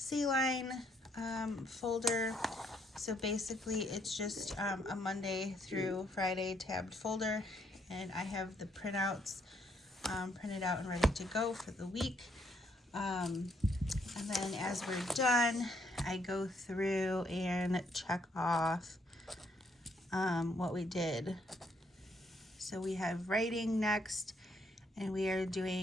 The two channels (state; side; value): normal; both; correlation 0.71